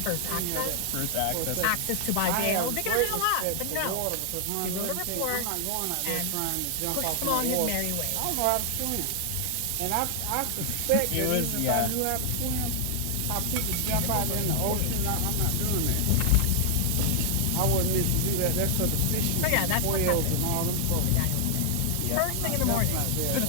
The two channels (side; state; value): both; different; correlation 0.00